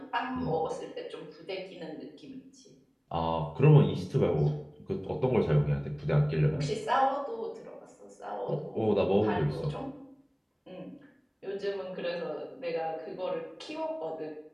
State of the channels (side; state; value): both; identical; correlation 1.00